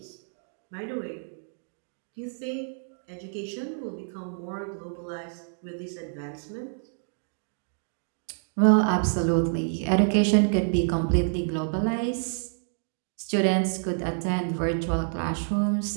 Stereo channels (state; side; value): silent; left; digital silence